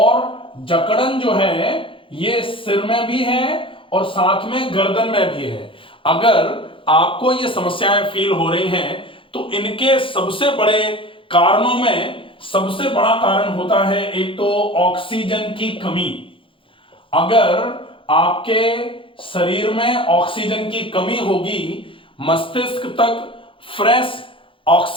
जकड़न जो है ये सिर में भी है और साथ में गर्दन में भी है। अगर आपको ये समस्याएं फील हो रही हैं तो इनके सबसे बड़े कारणों में सबसे बड़ा कारण होता है एक तो ऑक्सीजन की कमी। अगर आपके शरीर में ऑक्सीजन की कमी होगी, मस्तिष्क तक फ्रेश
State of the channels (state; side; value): late; right; 0.25 ms